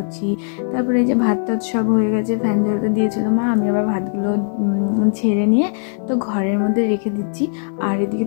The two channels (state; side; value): silent; right; digital silence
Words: তারপরে এই যে ভাত টাত সব হয়ে গেছে, ফ্যান ঝরাতে দিয়েছিল মা, আমি আবার ভাতগুলো ঝেড়ে নিয়ে তো ঘরের মধ্যে রেখে দিচ্ছি। আর এদিকে